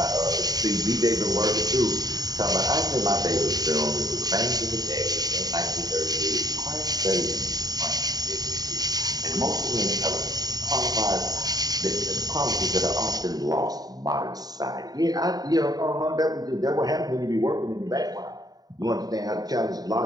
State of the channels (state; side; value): late; left; 0.18 ms